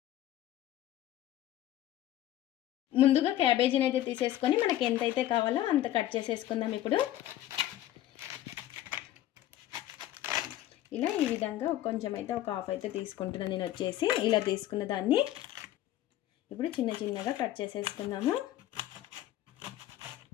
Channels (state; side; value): quieter; right; 13.4 dB